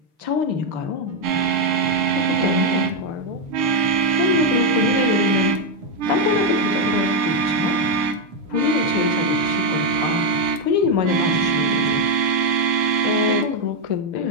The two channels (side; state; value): left; late; 6.6 ms